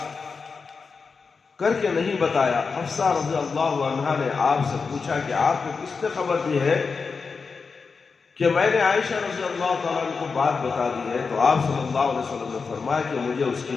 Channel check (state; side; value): quieter; right; 5.0 dB